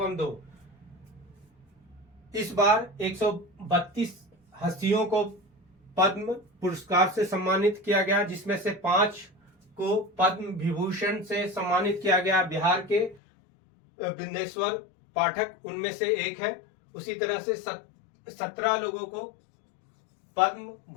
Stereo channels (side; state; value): right; drops out; at 13.2 s